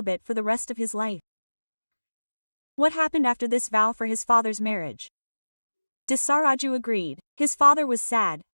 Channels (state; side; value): inverted; both; correlation -1.00